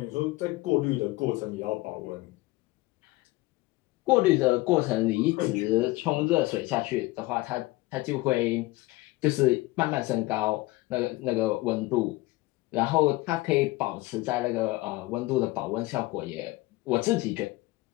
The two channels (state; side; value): quieter; right; 20.3 dB